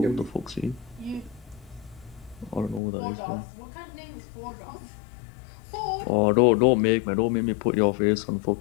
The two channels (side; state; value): right; drops out; at 2.8 s